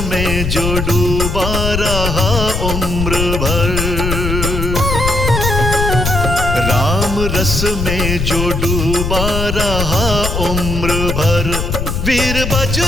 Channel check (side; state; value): left; noise; rumble, 2 dB below the sound